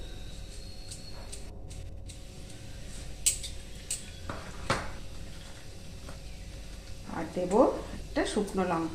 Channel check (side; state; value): both; identical; correlation 1.00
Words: আর দেব একটা শুকনো